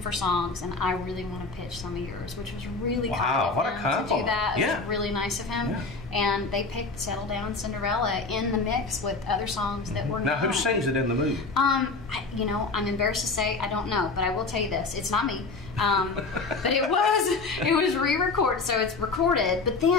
songs, and I really want to pitch some of yours, which was really kind of him to do that. It was really nice of him. And they picked Settle Down, Cinderella in the mix with other songs that were Now, who sings it in the movie? You know, I'm embarrassed to say I don't know, but I will tell you this: it's not me. But it was re-recorded, so it's recorded. But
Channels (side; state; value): right; quieter; 3.8 dB